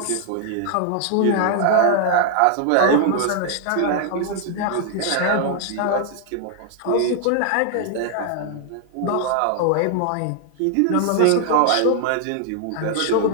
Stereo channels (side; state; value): both; different; correlation 0.00